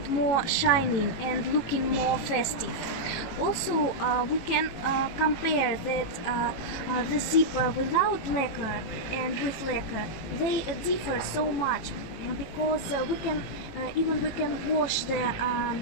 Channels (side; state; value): right; late; 18 ms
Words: more shining and looking more festive. Also, we can compare that the zipper without lacquer and with lacquer, they differ so much because we can wash the